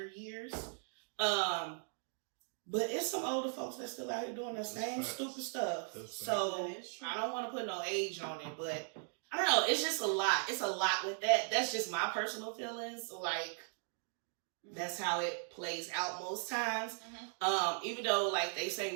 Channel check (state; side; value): silent; left; 52 dB below the other